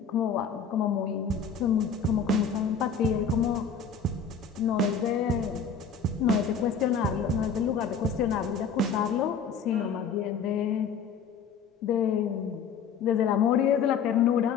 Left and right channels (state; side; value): quieter; right; 5.9 dB